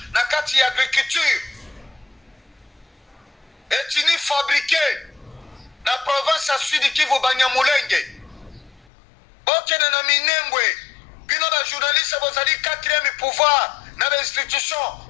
na kati ya agriculture. Etini fabriqué na province à Sud Kivu Banyamulenge. Bokene na Minembwe, bino ba journaliste bozali 4e pouvoir na les institutions,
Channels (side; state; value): right; drops out; at 8.8 s